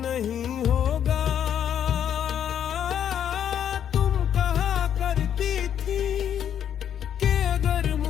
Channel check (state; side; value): quieter; right; 9.4 dB